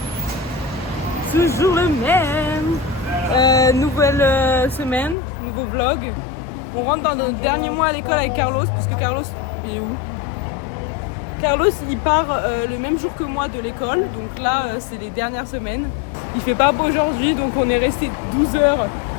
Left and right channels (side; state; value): right; drops out; at 5.2 s